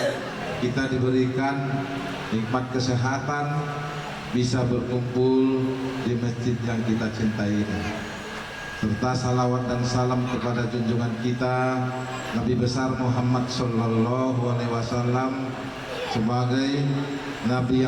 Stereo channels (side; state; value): both; identical; correlation 1.00